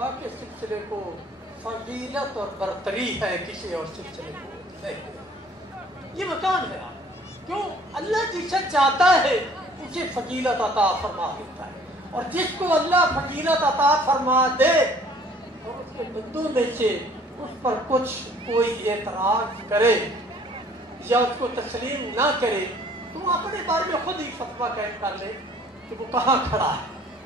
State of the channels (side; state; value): both; normal; correlation 0.55